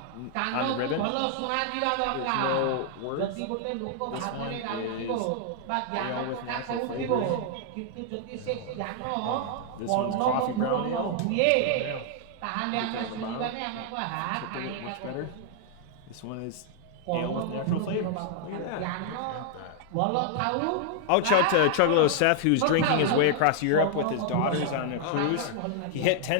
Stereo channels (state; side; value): different; both; correlation 0.00